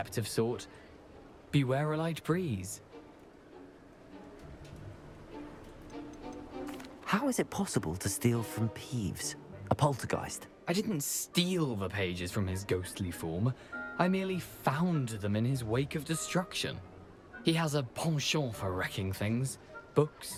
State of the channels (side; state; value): both; identical; correlation 1.00